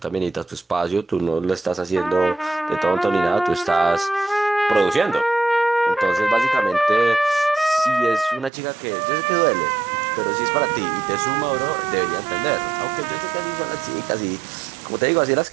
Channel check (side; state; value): left; drops out; at 8.5 s